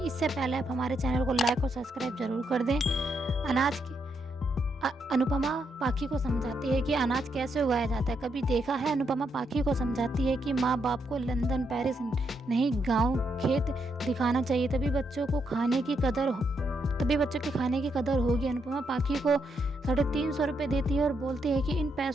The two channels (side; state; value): both; normal; correlation 0.79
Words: इससे पहले आप हमारे चैनल को लाइक और सब्सक्राइब जरूर कर दें। अनुपमा पाखी को समझाती है कि अनाज कैसे उगाया जाता है। कभी देखा है? अनुपमा पाखी को समझाती है कि माँ बाप को लंदन पेरिस नहीं, गांव खेत दिखाना चाहिए, तभी बच्चों के खाने की कदर होगी। अनुपमा पाखी को 350 रुपये देती है और बोलती है कि इन